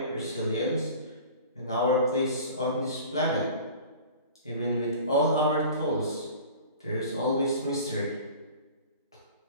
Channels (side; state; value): both; inverted; correlation -0.42